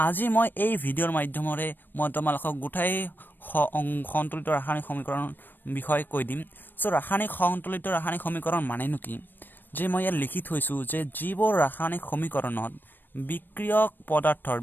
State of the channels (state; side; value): late; right; 0.093 ms